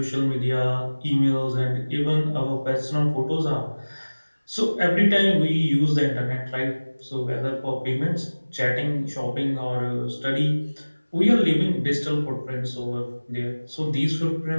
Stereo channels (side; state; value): both; inverted; correlation -1.00